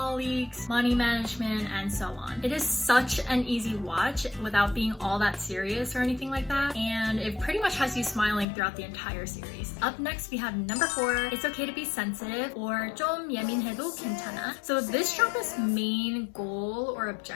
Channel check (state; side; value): drops out; right; at 8.5 s